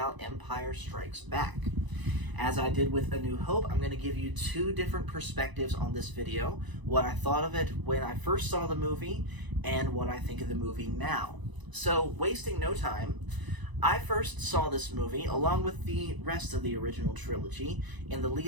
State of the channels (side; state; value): left; late; 1.0 ms